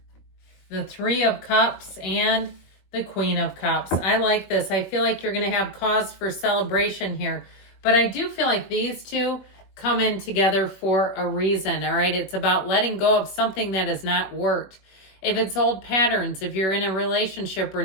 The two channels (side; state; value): right; late; 21 ms